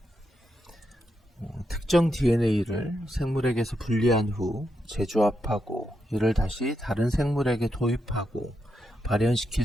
특정 DNA를 생물에게서 분리한 후 재조합하고 이를 다시 다른 생물에게 도입하고 발현시킬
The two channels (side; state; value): both; normal; correlation 0.84